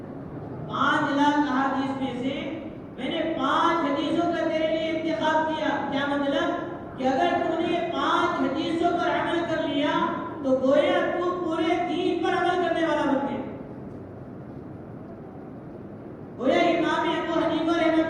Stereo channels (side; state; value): both; identical; correlation 1.00